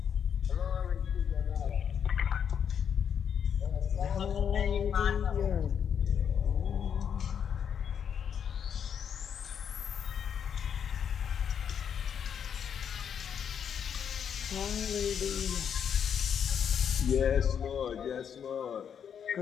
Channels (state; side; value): quieter; right; 7.9 dB